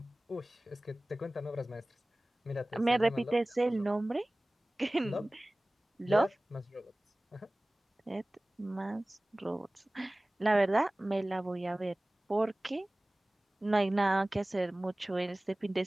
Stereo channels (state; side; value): normal; both; correlation 0.98